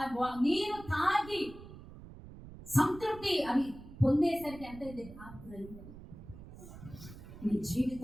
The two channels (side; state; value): right; noise; rumble, 15 dB below the sound